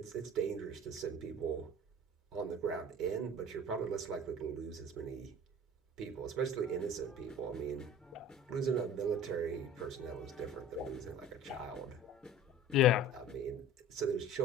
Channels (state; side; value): normal; both; correlation 0.42